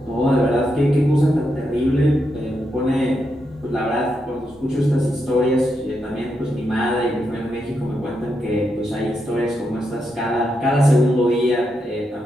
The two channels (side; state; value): both; normal; correlation 0.83